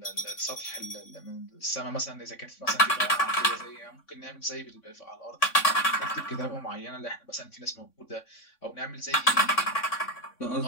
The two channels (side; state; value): right; late; 3.6 ms